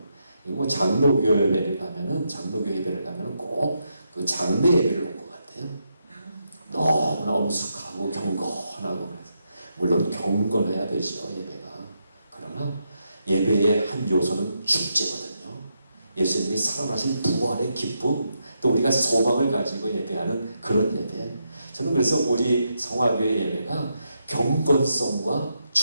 장로교 예배를 가면은 꼭 그 장례 예배를 온 것 같아요. 너무나 엄숙하고 경건하고, 물론 경건해야 되죠, 예배가. 그러나 예배의 한 요소는 축제거든요. 예수님이 살아나신 부활의 기쁨, 또 우리가 소망을 가지고 예배하는 그런 예배. 저는 그래서 우리 성화교회 예배가 경건성과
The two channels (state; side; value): inverted; both; correlation -0.82